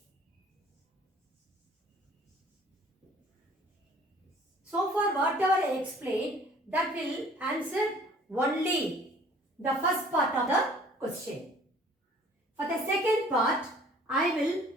So far whatever I explained, that will answer only the first part of the question. For the second part, I will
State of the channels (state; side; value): normal; both; correlation 0.53